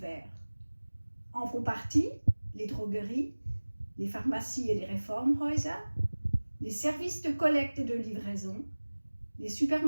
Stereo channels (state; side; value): inverted; both; correlation -1.00